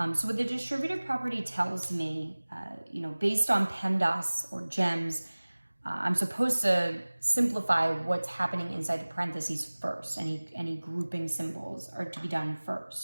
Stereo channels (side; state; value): both; inverted; correlation -1.00